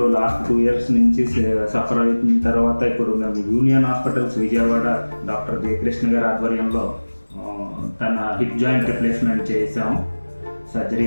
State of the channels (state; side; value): inverted; both; correlation -1.00